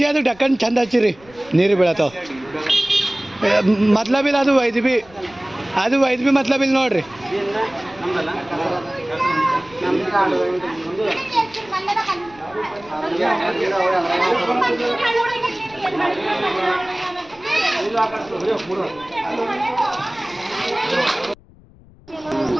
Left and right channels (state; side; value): noise; left; rumble, 25 dB below the sound